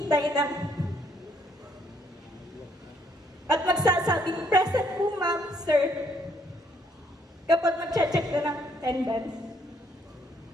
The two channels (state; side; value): normal; both; correlation 0.68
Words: ng at magsasabing, present po ma'am, sir, kapag mag-check na ng attendance.